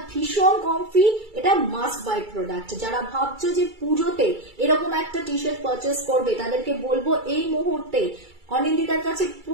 ভীষণ কমফি। এটা মাস্ট বাই প্রোডাক্ট। যারা ভাবছো যে পুজোতে এরকম একটা টি শার্ট পারচেস করবে, তাদেরকে বলবো এই মুহূর্তে অনিন্দিতার কাছে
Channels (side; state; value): left; late; 2.3 ms